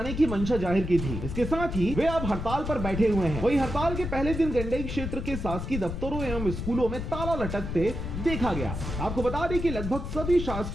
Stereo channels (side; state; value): left; noise; rumble, 5 dB below the sound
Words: की मंशा जाहिर की थी। इसके साथ ही वे अब हड़ताल पर बैठे हुए हैं। वहीं हड़ताल के पहले दिन गंडई क्षेत्र के शासकीय दफ्तरों एवं स्कूलों में ताला लटकते देखा गया। आपको बता दें कि लगभग सभी